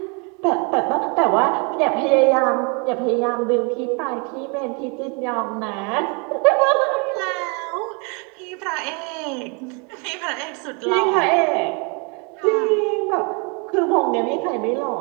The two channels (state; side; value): quieter; left; 33.7 dB